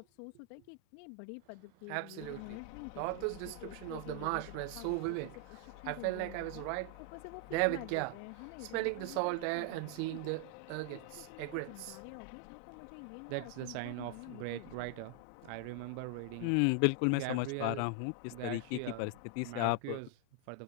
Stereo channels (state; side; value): different; both; correlation 0.00